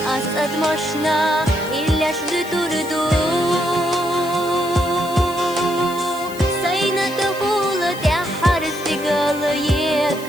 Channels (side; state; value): left; noise; hiss, 16 dB below the sound